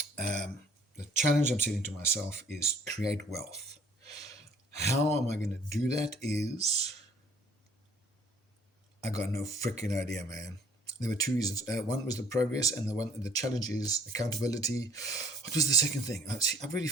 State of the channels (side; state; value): both; normal; correlation 0.56